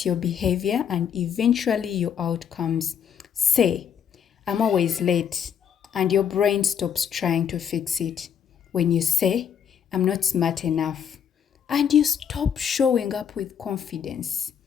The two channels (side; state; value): right; quieter; 8.0 dB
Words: your behavior and eventually your outcomes. Say, I'm always late, and your brain stops trying to fix it. When you say, I'm not smart enough, and you stop showing up with confidence.